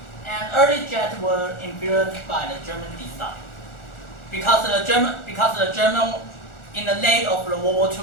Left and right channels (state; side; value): late; right; 1.4 ms